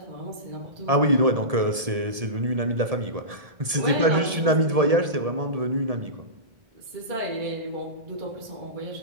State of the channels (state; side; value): late; left; 1.7 ms